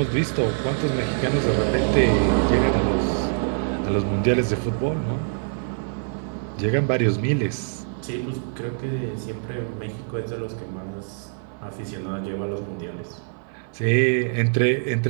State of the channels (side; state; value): left; silent; 57 dB below the other